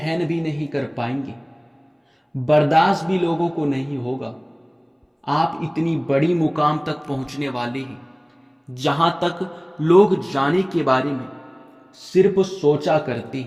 भी नहीं कर पाएंगे, बर्दाश्त भी लोगों को नहीं होगा। आप इतनी बड़ी मुकाम तक पहुंचने वाले हैं जहां तक लोग जाने के बारे में सिर्फ सोचा करते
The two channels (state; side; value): identical; both; correlation 1.00